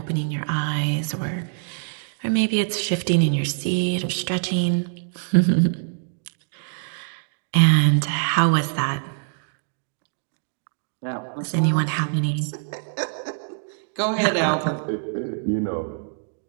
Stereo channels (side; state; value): left; silent; digital silence